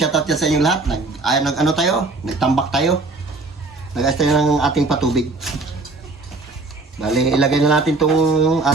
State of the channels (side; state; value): left; quieter; 3.4 dB